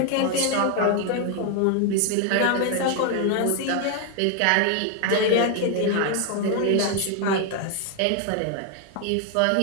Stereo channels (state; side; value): different; both; correlation 0.00